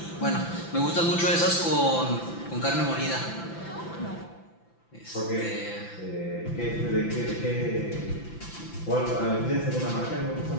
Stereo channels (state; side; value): late; right; 5.9 ms